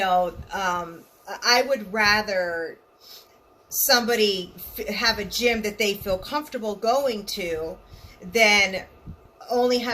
I would rather somebody have a gym that they feel comfortable going to than only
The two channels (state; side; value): identical; both; correlation 1.00